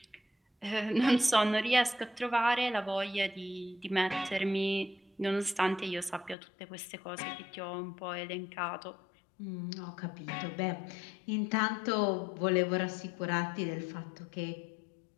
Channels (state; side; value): drops out; right; at 6.4 s